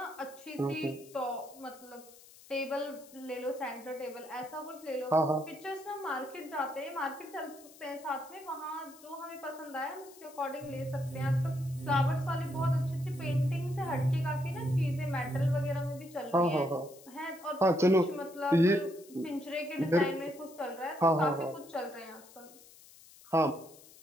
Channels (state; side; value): noise; left; hiss, 22 dB below the sound